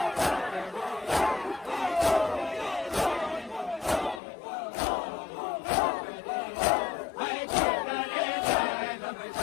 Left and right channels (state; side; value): drops out; right; at 4.2 s